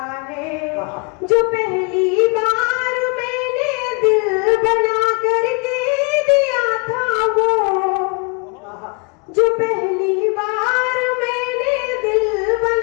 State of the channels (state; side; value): quieter; right; 33.8 dB